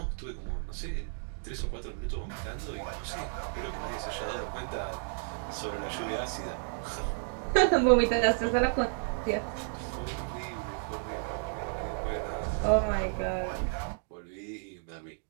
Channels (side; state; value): left; silent; 56 dB below the other